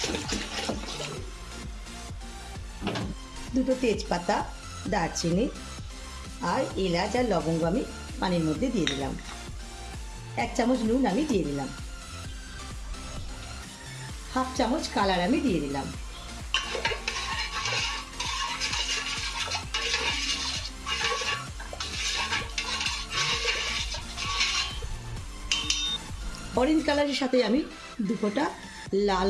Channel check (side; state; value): both; identical; correlation 1.00